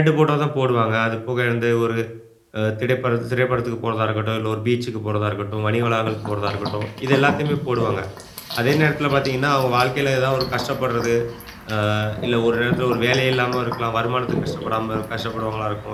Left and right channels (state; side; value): identical; both; correlation 1.00